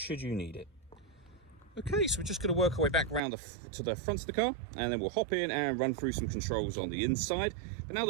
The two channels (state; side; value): drops out; left; at 3.2 s